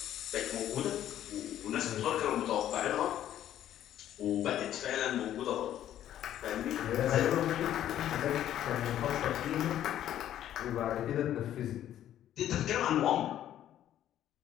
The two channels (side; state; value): right; quieter; 11.6 dB